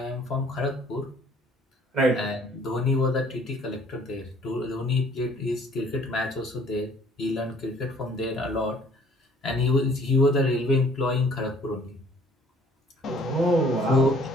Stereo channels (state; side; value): normal; both; correlation 0.57